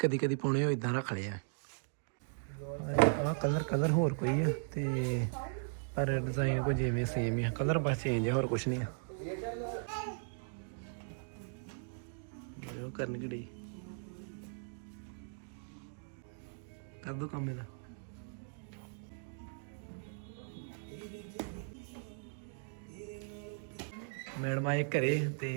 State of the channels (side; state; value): left; silent; digital silence